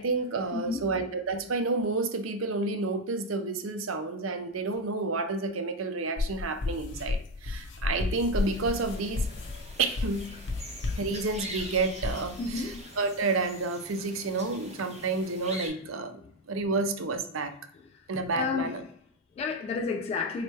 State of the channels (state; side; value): normal; both; correlation 0.09